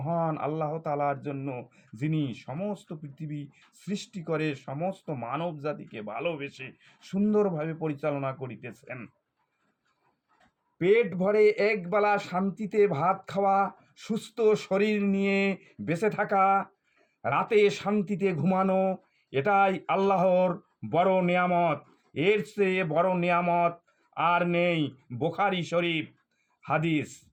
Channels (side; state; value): both; identical; correlation 1.00